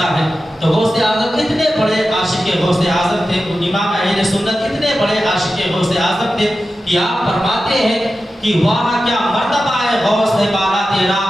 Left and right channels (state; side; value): normal; both; correlation 0.93